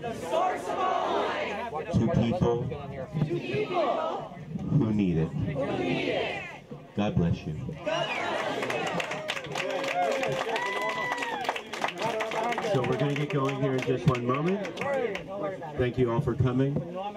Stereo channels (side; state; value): both; identical; correlation 1.00